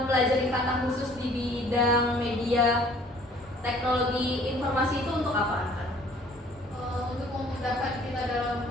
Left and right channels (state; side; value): normal; both; correlation 0.55